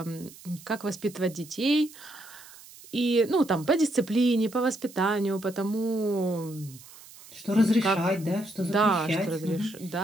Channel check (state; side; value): noise; right; hiss, 20 dB below the sound